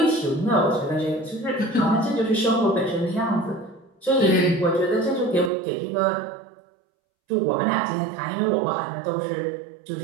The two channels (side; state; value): left; drops out; at 5.5 s